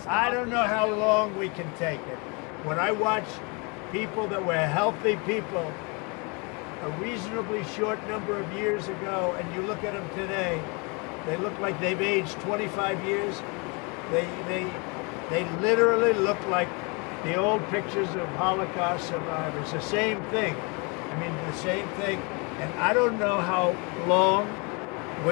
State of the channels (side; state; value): right; quieter; 31.2 dB